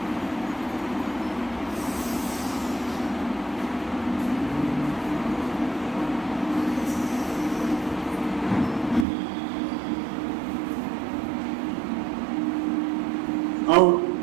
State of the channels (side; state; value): left; drops out; at 9.1 s